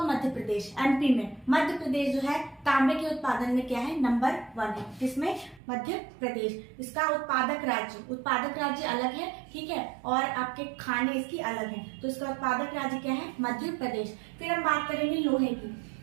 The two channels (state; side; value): drops out; left; at 5.6 s